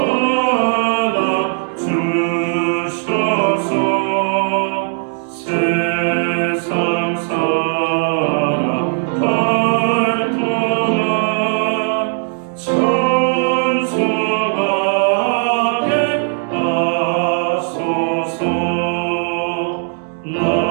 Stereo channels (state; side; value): silent; left; 57 dB below the other